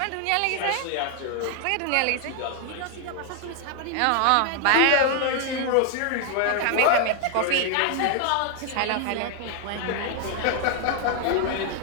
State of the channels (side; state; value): both; different; correlation 0.00